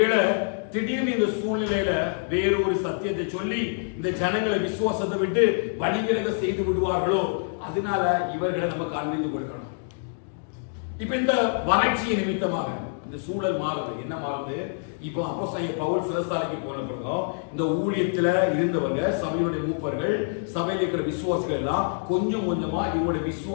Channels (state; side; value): silent; right; digital silence